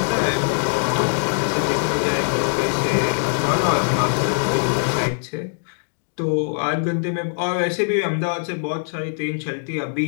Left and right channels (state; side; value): silent; right; digital silence